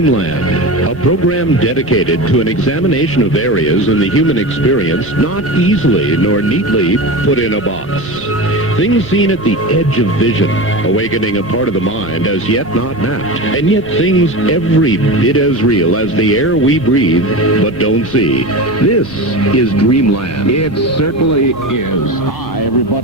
a program dedicated to an examination of areas in the human experience not easily nor neatly put in a box. Things seen at the edge of vision, awakening a part of the mind as yet not mapped, and yet things every bit as real as the air we breathe but don't see. This is Dreamland. It certainly is. Hi,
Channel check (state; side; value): normal; both; correlation 0.26